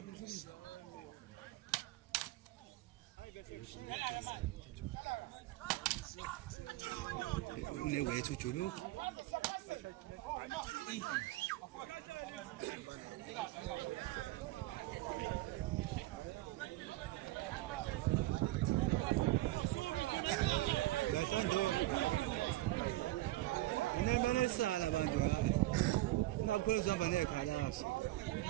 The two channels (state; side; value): quieter; left; 17.4 dB